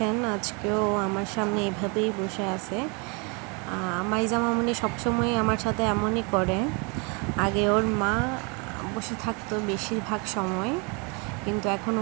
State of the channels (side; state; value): left; quieter; 32.2 dB